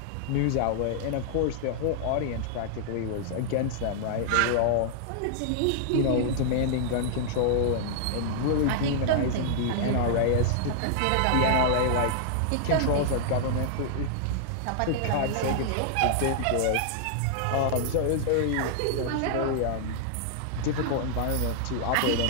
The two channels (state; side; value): different; both; correlation -0.01